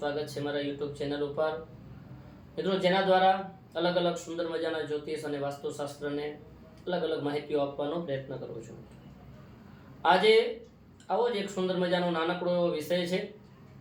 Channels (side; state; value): both; identical; correlation 1.00